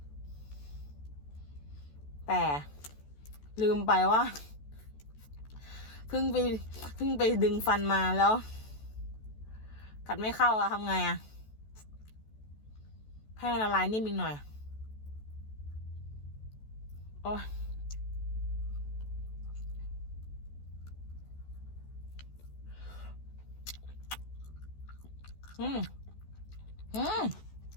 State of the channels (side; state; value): right; late; 14 ms